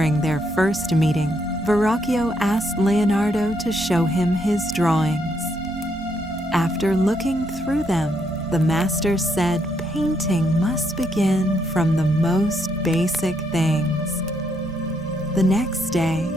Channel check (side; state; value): both; normal; correlation 0.75